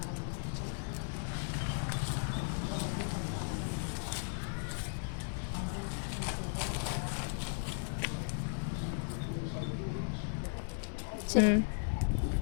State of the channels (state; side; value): silent; right; digital silence